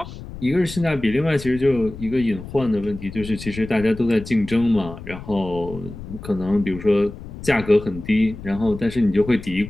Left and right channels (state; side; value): noise; left; rumble, 13 dB below the sound